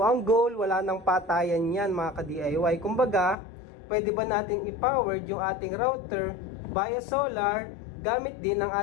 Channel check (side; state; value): right; drops out; at 3.4 s